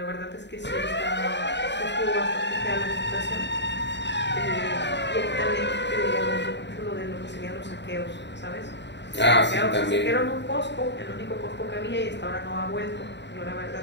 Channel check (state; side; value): late; right; 0.51 ms